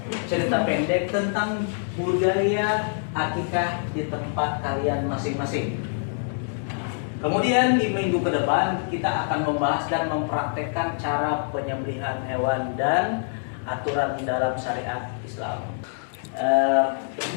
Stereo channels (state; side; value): silent; right; digital silence